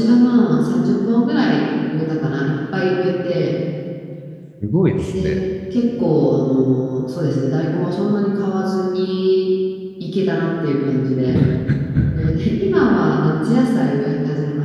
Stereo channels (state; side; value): identical; both; correlation 1.00